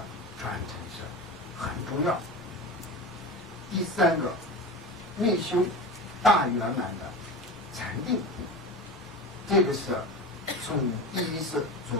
传承是很重要。第三个，内修大圆满的禅定，这个是从第一是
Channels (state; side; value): normal; both; correlation 0.28